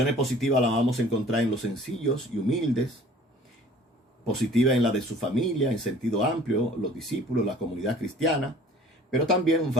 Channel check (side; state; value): both; normal; correlation 0.50